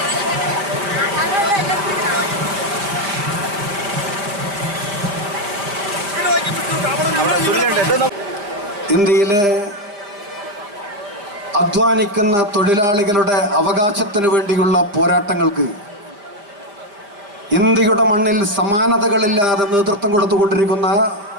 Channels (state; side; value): late; left; 5.0 ms